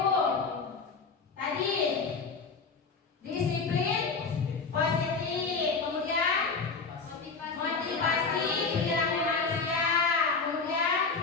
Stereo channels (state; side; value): quieter; right; 4.7 dB